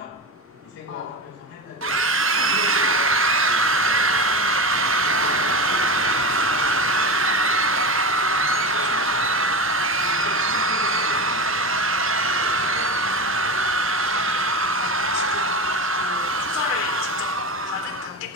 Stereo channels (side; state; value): both; normal; correlation 0.24